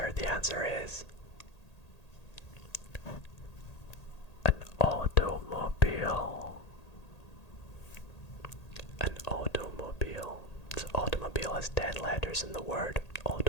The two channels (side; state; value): right; late; 1.8 ms